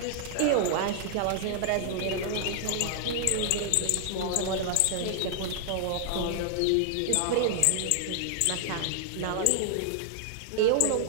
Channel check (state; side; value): different; both; correlation 0.00